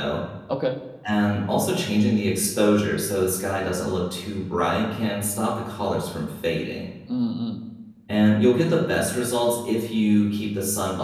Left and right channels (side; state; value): both; identical; correlation 1.00